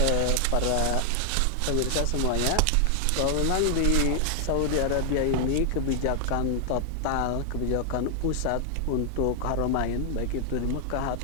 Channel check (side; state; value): both; different; correlation 0.00